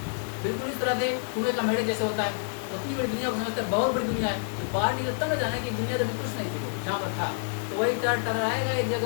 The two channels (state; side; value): silent; right; digital silence